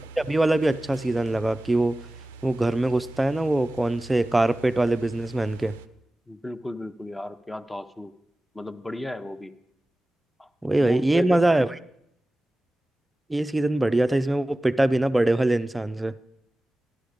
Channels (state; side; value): normal; both; correlation 0.96